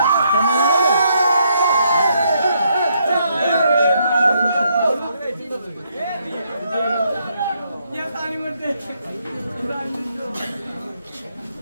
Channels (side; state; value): both; inverted; correlation -0.74